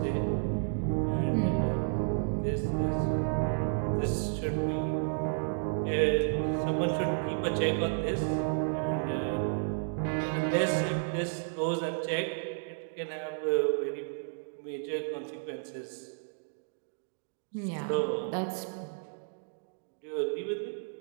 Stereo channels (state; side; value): silent; left; digital silence